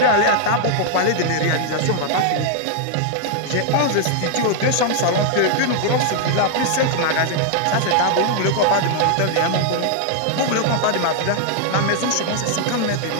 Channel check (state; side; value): different; both; correlation 0.00